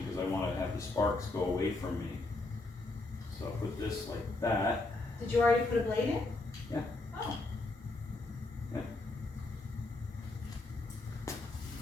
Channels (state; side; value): quieter; right; 3.1 dB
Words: because I want to have the sparks go away from me. So I'll put this like that. Did you already put a blade in? Yeah. Oh.